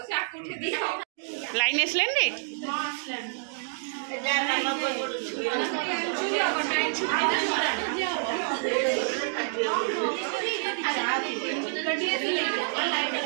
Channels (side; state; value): left; silent; digital silence